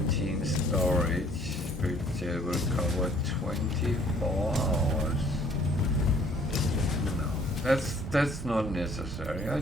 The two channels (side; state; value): both; normal; correlation 0.59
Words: storage, which will cover 24 hours. No, that's not necessary. I